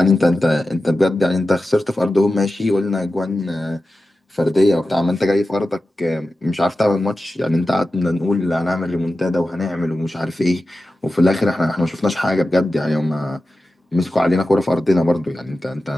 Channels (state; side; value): normal; both; correlation 0.93